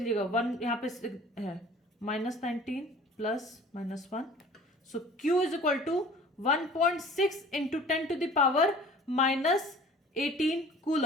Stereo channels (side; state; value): both; normal; correlation 0.46